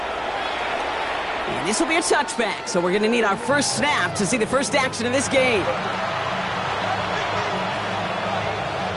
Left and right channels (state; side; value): identical; both; correlation 1.00